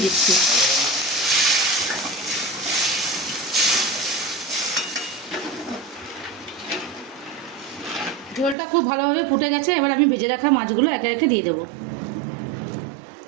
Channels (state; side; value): drops out; left; at 8.6 s